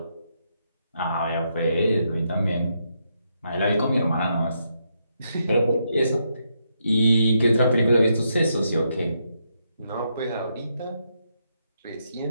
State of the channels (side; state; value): both; inverted; correlation -0.80